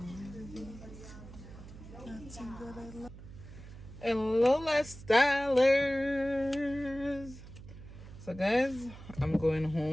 Nothing that I love. Hello, lifestylers. So guys, I'm going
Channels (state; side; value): noise; right; hum, 15 dB below the sound